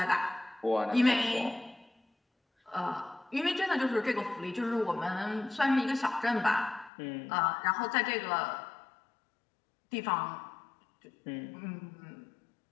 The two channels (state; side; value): drops out; right; at 6.9 s